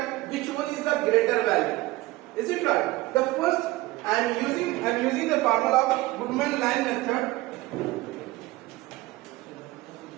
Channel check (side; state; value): left; quieter; 19.0 dB